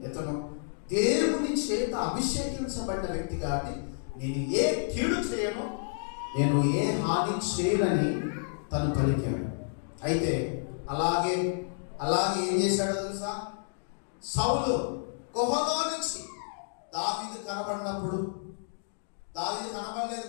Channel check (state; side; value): silent; right; digital silence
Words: ఇతను దేవుని చేత అభిషేకించబడిన వ్యక్తి కాబట్టి నేను ఏ కీడు చేయను, నేను ఏ హాని చేయనని తను పలికాడు. అయితే అలాగే ఏం చేశాడో తెలుసా? సౌలు గుహలో నుంచి దావీదు కనబడినప్పుడు, దావీదు కనబడలేదు